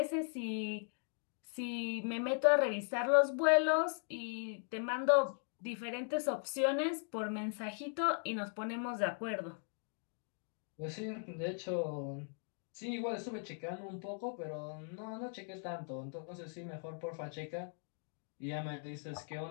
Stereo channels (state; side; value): silent; right; 52 dB below the other